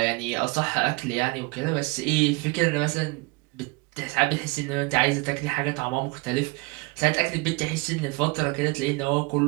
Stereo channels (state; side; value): quieter; left; 27.3 dB